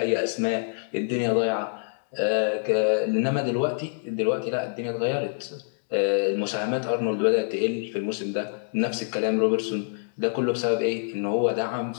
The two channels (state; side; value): silent; right; digital silence